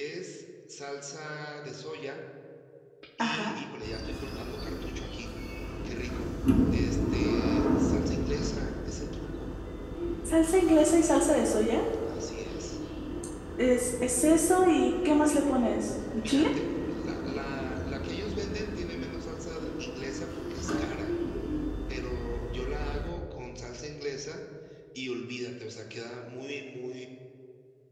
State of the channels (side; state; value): both; identical; correlation 1.00